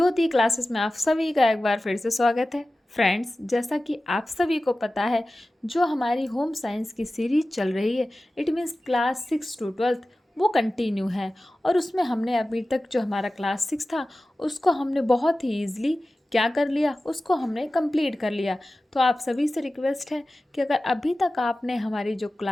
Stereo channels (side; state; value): both; normal; correlation 0.95